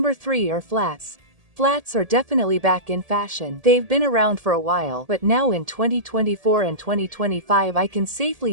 3 are flats. Flats are definitely back in fashion. They've been around for a while, but now in 2024 and 2025 I can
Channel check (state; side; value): late; left; 1.8 ms